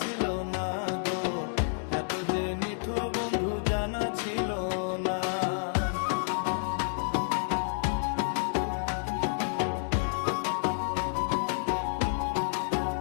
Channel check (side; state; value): right; silent; digital silence